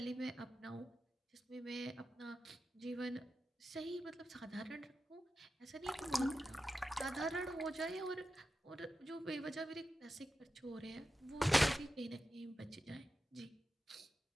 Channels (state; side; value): normal; both; correlation 0.92